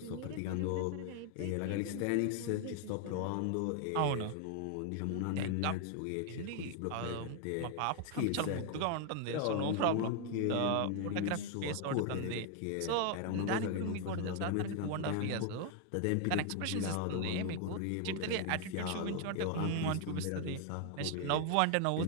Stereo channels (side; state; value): both; different; correlation 0.00